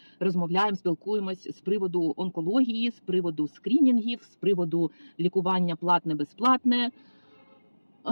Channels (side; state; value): both; inverted; correlation -1.00